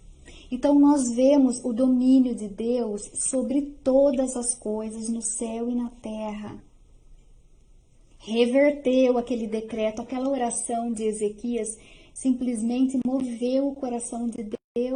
Então nós vemos o domínio de Deus sobre todas as coisas no céu e na terra. Reverteu aquele decreto, aquela oração de Ezequias, simplesmente moveu o coração de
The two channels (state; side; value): identical; both; correlation 1.00